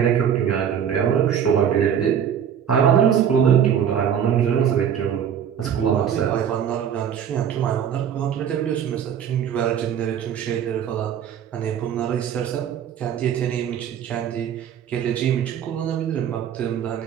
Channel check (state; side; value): quieter; left; 8.7 dB